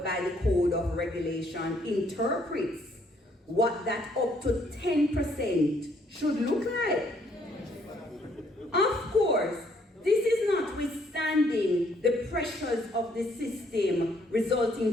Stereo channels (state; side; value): normal; both; correlation 0.67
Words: by the Code of Regulation interprets what that up to 10% should look like. Of course, this is notwithstanding the pressures of the system